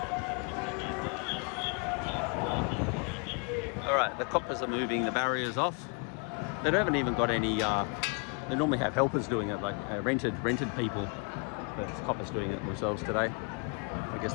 Alright, the coppers are moving the barriers off. They haven't even got any, they normally have helpers doing it, like rented people, but it's coppers doing it themselves today. I guess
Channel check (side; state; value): right; quieter; 34.6 dB